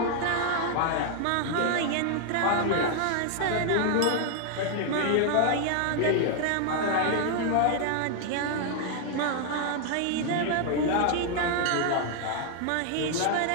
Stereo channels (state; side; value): different; both; correlation 0.00